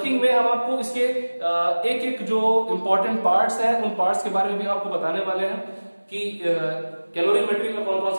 में हम आपको इसके एक एक जो इंपॉर्टेंट पार्ट्स हैं उन पार्ट्स के बारे में भी आपको बताने वाले हैं कि कैलोरीमेट्री में कौन कौन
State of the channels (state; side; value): inverted; both; correlation -1.00